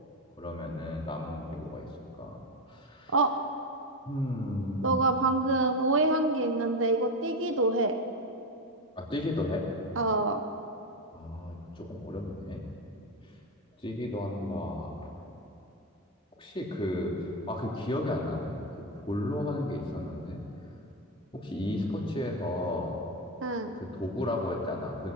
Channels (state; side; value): normal; both; correlation 0.12